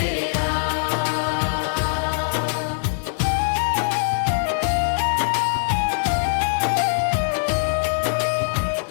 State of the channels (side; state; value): right; silent; digital silence